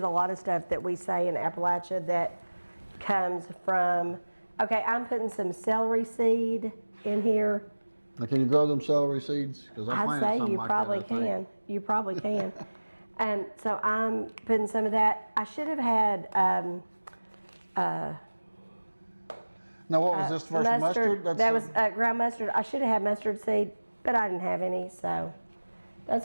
a lot of stuff that we say in Appalachia that comes from. Okay, I'm putting some celery seed in here. Now, can you grow them celery seeds? Because I I'd planted say something you like probably that, I think. can. You probably can. So I'm putting some of that. I should have had Now, what was this first mustard? That was ground mustard. I should have had mustard seed, but I didn't have any, so that's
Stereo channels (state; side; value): inverted; both; correlation -1.00